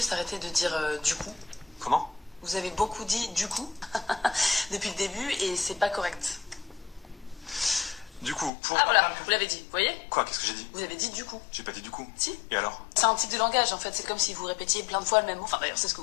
arrêter de dire du coup? Comment? Vous avez beaucoup dit du coup depuis le début et c'est pas correct. Du coup, pour... Ah voilà, vous l'avez dit, vous voyez? Quoi? Qu'est-ce que j'ai dit? Vous avez dit du coup. J'ai pas dit du coup. Si. Et alors? C'est un tic de langage en fait, c'est comme si vous répétiez plein de fois le même mot. Enfin d'ailleurs, c'est ce que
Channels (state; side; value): drops out; right; at 8.5 s